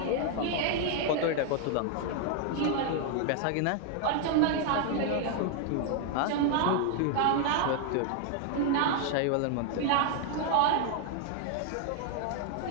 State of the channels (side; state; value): both; different; correlation 0.00